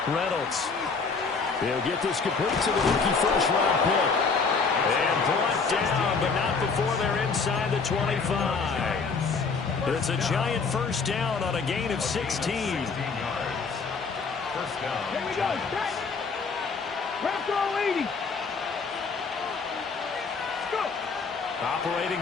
Reynolds. He'll get this complete to the rookie first-round pick. And brought down, but not before they're inside the 25. It's a giant first down on a gain of 16. Here we go. Wrap throw 80. Let's go.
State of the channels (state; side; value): quieter; right; 4.8 dB